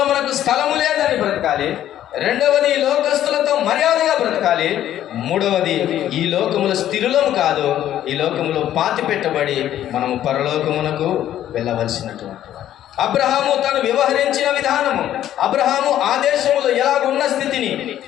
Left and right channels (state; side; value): quieter; right; 11.8 dB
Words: మనకు స్థలము లేదని బ్రతకాలి. రెండవది, ఈ లోకస్తులతో మర్యాదగా బ్రతకాలి. మూడవది, ఈ లోకములో స్థిరులము కాదు, ఈ లోకములో పాతి పెట్టబడి మనము పరలోకమునకు వెళ్ళవలసినటువంటి. అబ్రహాము తను వ్యవహరించిన విధానము, అబ్రహాము ఆ దేశములో ఎలాగున్న స్థితిని,